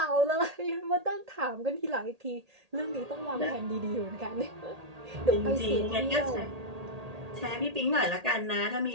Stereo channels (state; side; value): late; left; 1.8 ms